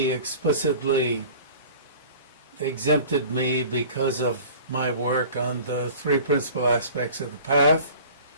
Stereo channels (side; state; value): both; inverted; correlation -0.44